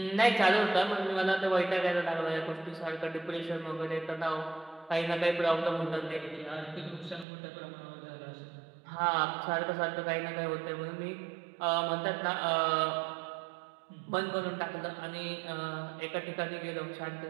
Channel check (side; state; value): left; drops out; at 7.2 s